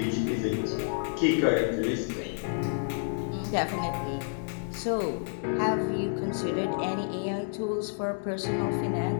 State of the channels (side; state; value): right; silent; digital silence